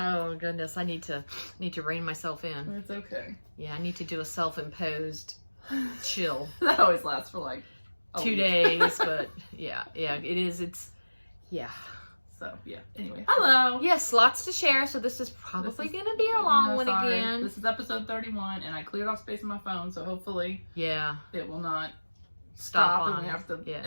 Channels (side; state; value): both; inverted; correlation -1.00